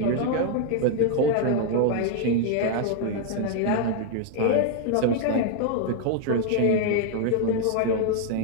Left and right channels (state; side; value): different; both; correlation 0.00